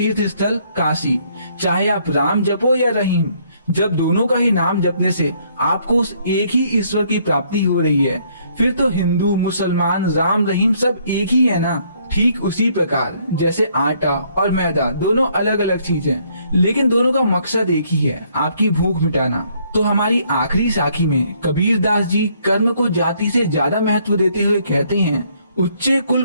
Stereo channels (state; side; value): inverted; both; correlation -0.67